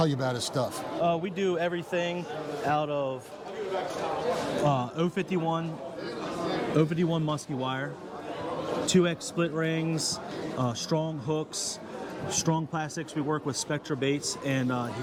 you about his stuff. We do everything out of 051 musky wire, 2X split rings, strong hooks, strong plastics. We work with Spectra baits, and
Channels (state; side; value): identical; both; correlation 1.00